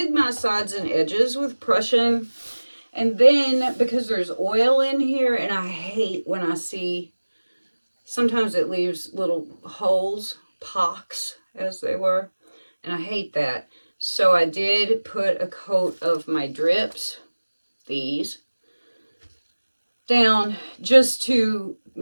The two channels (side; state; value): both; inverted; correlation -1.00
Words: my sides and edges with Prussian. And then because there's oil in here, and I hate when I see, sometimes it leaves little holes, pocks as they were, and I hate that. So I did put a coat of my drips, these, down just to